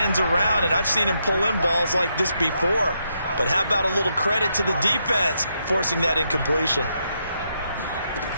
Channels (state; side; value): inverted; both; correlation -0.80